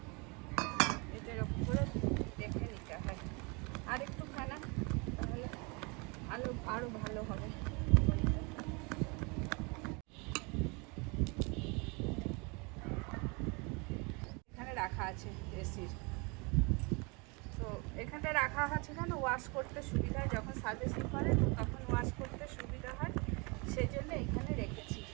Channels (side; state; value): left; quieter; 29.8 dB